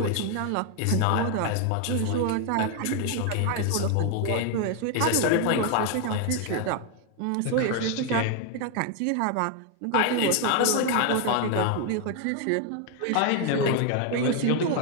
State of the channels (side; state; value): both; different; correlation 0.00